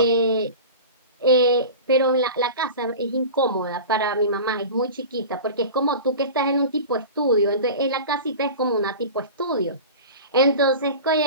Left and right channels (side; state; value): both; inverted; correlation -0.34